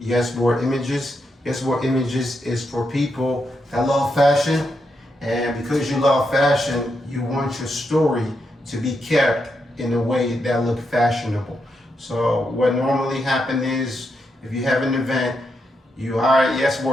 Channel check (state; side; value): normal; both; correlation 0.83